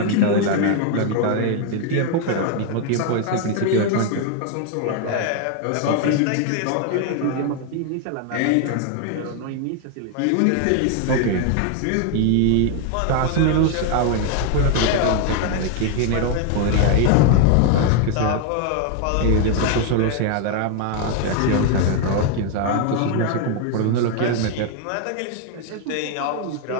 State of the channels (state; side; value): different; both; correlation 0.00